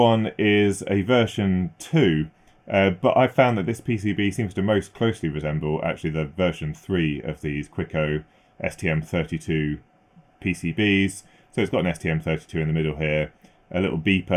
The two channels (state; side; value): identical; both; correlation 1.00